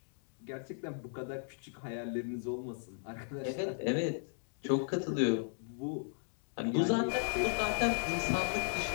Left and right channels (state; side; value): silent; right; digital silence